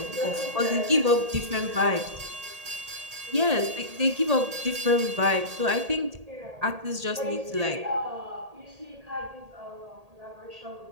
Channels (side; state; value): left; late; 1.8 ms